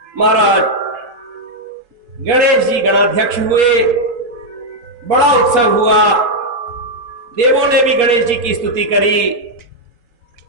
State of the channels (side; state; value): left; late; 4.2 ms